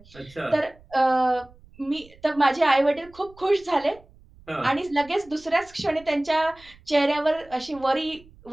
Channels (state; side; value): noise; right; rumble, 25 dB below the sound